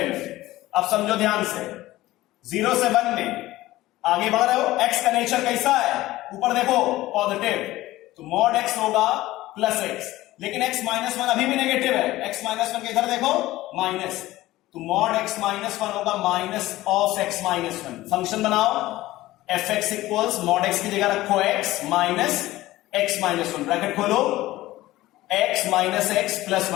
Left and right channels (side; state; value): right; quieter; 16.9 dB